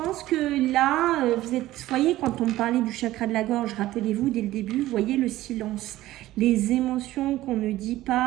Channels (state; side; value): quieter; left; 15.7 dB